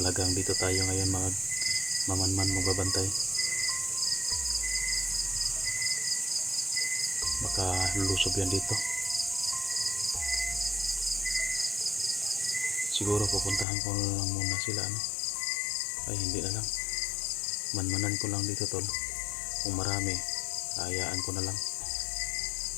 dito tayo ngayon mga mamanman magbabantay. Baka lulusob yan dito. Siguro pupuntahan ko na lang muna sila, ano? Ay hindi na lang, manmanan ko lang dito tol. Kung marami, hayaan ko na lang.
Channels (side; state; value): right; drops out; at 13.7 s